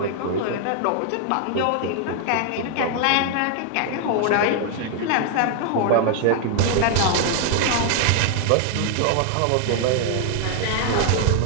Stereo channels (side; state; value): both; different; correlation 0.00